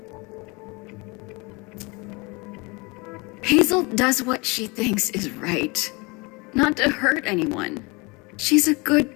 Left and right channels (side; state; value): right; quieter; 27.2 dB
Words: Hazel does what she thinks is right. Not to hurt anyone. She's a